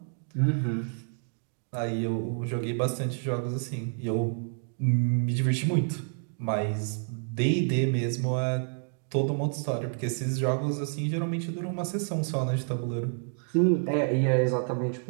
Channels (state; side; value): silent; left; 59 dB below the other